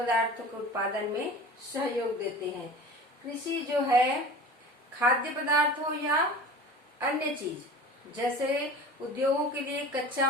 के उत्पादन में सहयोग देते हैं। कृषि जो है खाद्य पदार्थ हो या अन्य चीज, जैसे उद्योगों के लिए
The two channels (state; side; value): normal; both; correlation 0.38